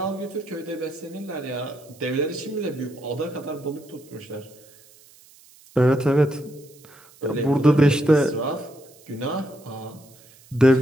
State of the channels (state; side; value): noise; right; hiss, 26 dB below the sound